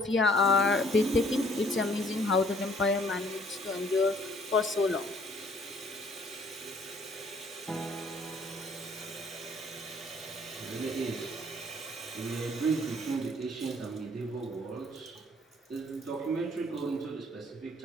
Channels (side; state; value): both; normal; correlation 0.60